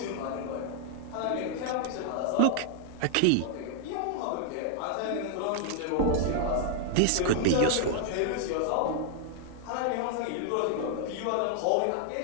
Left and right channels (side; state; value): both; different; correlation -0.01